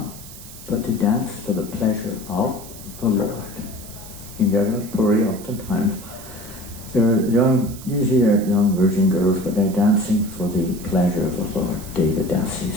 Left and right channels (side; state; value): right; noise; hiss, 16 dB below the sound